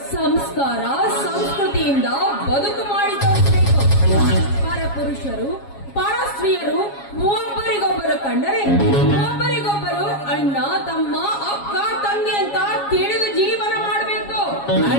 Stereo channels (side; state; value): right; late; 7.3 ms